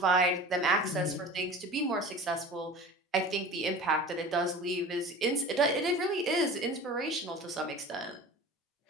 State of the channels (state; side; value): normal; both; correlation 0.38